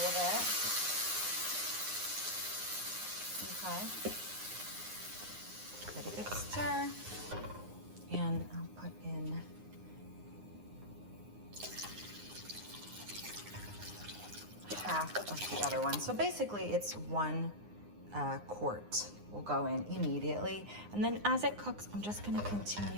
of it. Okay. Give it a good stir, and I'll put in half of the other one. So basically it's 1 quart will go in immediately. And then as it cooks, I'm just gonna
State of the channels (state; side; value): late; left; 9.7 ms